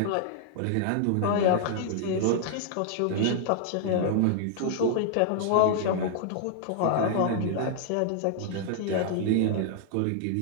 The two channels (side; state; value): both; different; correlation -0.01